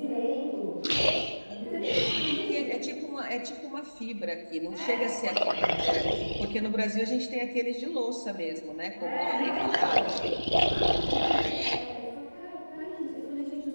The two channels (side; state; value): both; inverted; correlation -1.00